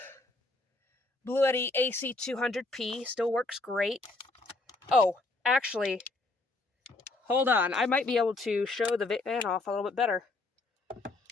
Bluetti AC200P still works great. Oh, actually, hold on. I might be able to show the van off a little bit better.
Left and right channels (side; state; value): right; quieter; 3.1 dB